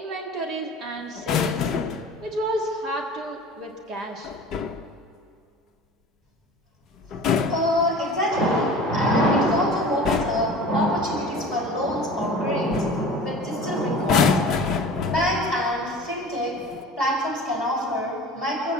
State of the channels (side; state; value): both; normal; correlation 0.39